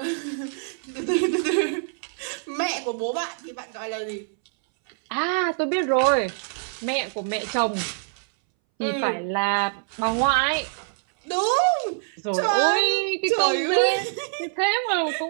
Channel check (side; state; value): left; silent; 62 dB below the other